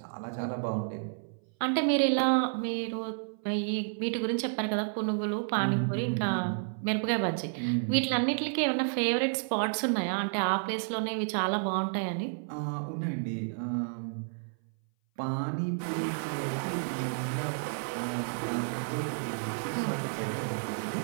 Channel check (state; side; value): silent; left; 57 dB below the other